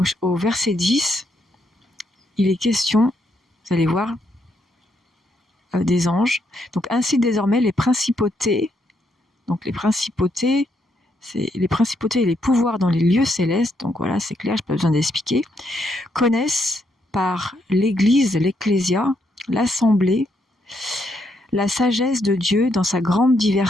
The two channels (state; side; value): normal; both; correlation 0.76